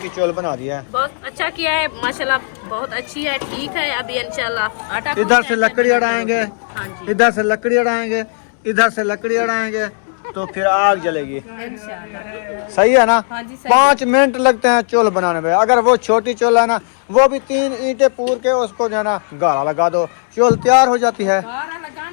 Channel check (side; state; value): right; silent; digital silence